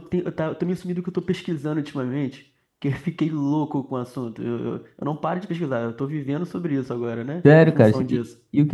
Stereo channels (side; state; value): both; identical; correlation 1.00